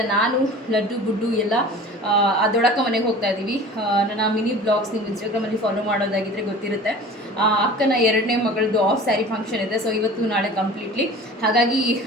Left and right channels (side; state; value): both; normal; correlation 0.41